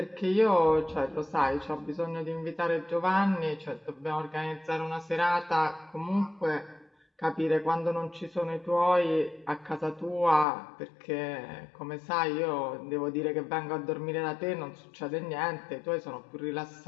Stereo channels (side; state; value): right; drops out; at 10.5 s